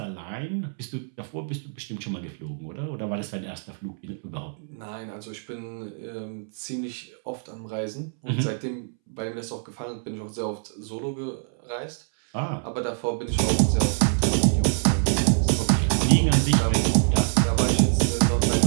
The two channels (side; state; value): left; silent; 61 dB below the other